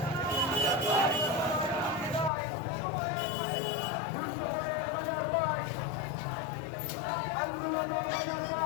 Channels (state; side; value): drops out; right; at 2.3 s